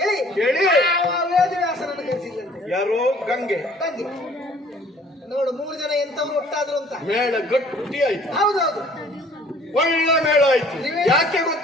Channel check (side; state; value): both; normal; correlation 0.54